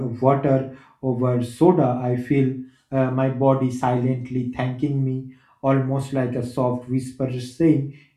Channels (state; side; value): identical; both; correlation 1.00